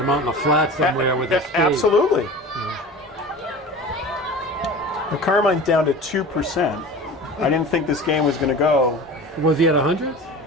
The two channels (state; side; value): normal; both; correlation 0.36